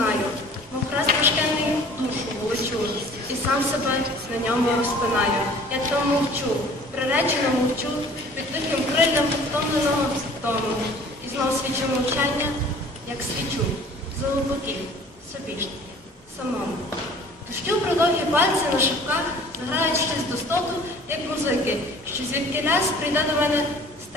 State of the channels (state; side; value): normal; both; correlation 0.49